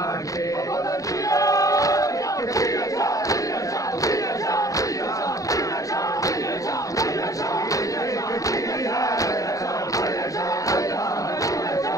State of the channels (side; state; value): right; late; 0.16 ms